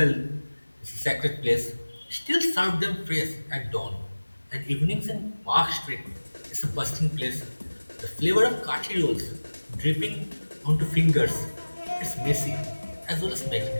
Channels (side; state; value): both; inverted; correlation -1.00